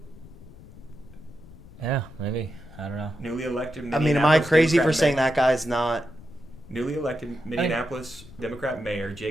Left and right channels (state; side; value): noise; left; rumble, 19 dB below the sound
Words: Yeah, maybe. I don't know. Newly elected. I mean, am I crazy for saying that guy's not? Newly elected Minneapolis Democrat Mayor